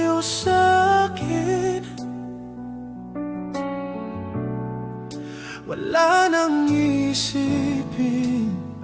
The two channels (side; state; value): both; identical; correlation 1.00